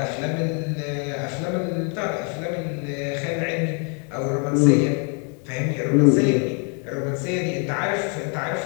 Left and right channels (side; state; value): right; quieter; 38.2 dB